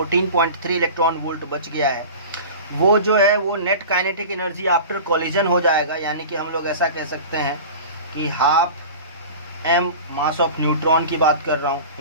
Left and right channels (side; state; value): both; inverted; correlation -0.35